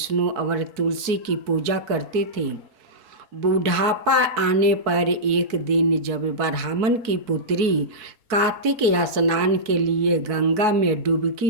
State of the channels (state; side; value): late; left; 4.6 ms